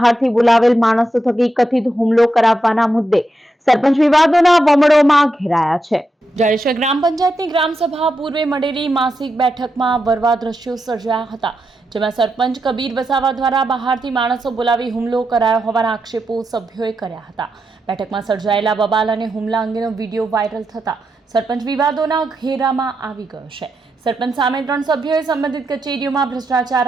બોલાવેલ માણસો થકી કથિત હુમલો કરાવવાના મુદ્દે સરપંચ વિવાદોના વમળોમાં ઘેરાયા છે। જાડેશ્વર ગ્રામ પંચાયતની ગ્રામસભા પૂર્વે મળેલી માસિક બેઠકમાં વરવા દ્રશ્યો સર્જાયા હતા, જેમાં સરપંચ કબીર વસાવા દ્વારા બહારથી માણસો બોલાવી હુમલો કરાયો હોવાના આક્ષેપો સભ્યોએ કર્યા હતા। બેઠકમાં સર્જાયેલા બબાલ અને હુમલા અંગેનો વિડીયો વાયરલ થતા સરપંચ વિવાદોના ઘેરામાં આવી ગયો છે। સરપંચ સામે 3 સભ્યોએ સંબંધિત કચેરીઓમાં ભ્રષ્ટાચાર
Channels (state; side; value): normal; both; correlation 0.85